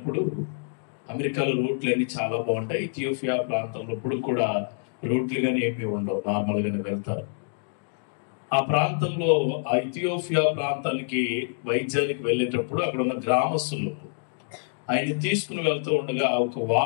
అమెరికాలో రోడ్లు అన్ని చాలా బాగుంటాయి, ఇథియోపియా ప్రాంతంలో ఇప్పుడు కూడా రోడ్లు కానీ ఏమీ ఉండవు, నార్మల్గానే వెళ్తారు. ఆ ప్రాంతంలో, ఆ ఇథియోపియా ప్రాంతానికి వైద్యానికి వెళ్ళేటప్పుడు అక్కడ ఉన్న గ్రామస్తులు ఆయన తీసుకుని వెళ్తూ ఉండగా ఒక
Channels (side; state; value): right; silent; digital silence